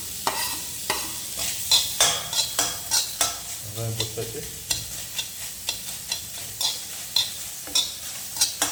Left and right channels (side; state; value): both; identical; correlation 1.00